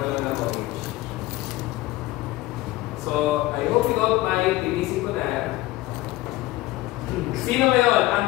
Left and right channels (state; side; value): quieter; right; 18.1 dB